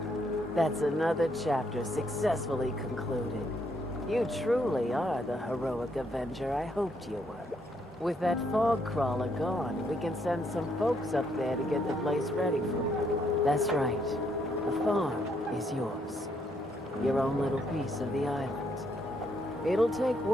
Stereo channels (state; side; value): normal; both; correlation 0.73